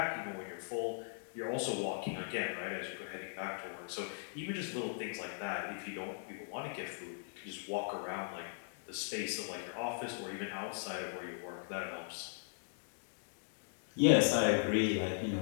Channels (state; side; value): silent; right; digital silence